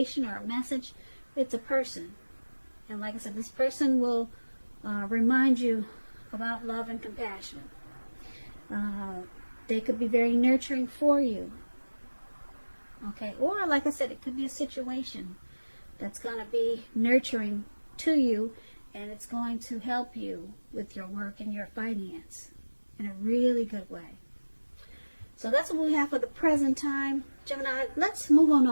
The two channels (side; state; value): both; inverted; correlation -1.00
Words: or a message, it's a person. And like I said, this person will remind you about love and compassion. They could be very nurturing for you. Okay, or like I said, it could be a situation that's going to be nurturing to you, and it's going to help you with your work and your finance in a really good way. So that's what we have for the present time. Gemini, let's move on